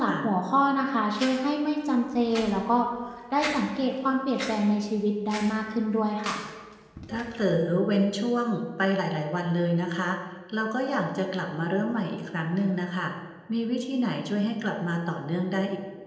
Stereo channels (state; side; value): identical; both; correlation 1.00